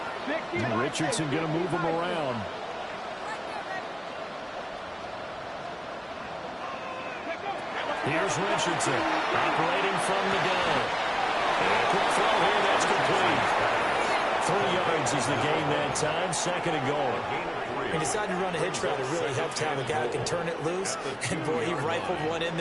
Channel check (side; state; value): both; identical; correlation 1.00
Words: Richardson going to move him around. Here's Richardson operating from the gun. And a quick throw here, that's complete. 3 yards is the gain that time, second and goal. He decided to run a hitch route. It really helped to have a guy who can turn it loose. And, boy, he rifled one in